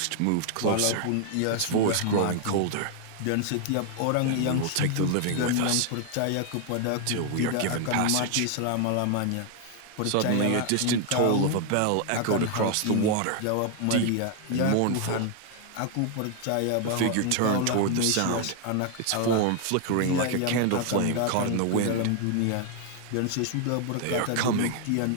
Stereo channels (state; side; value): different; both; correlation 0.00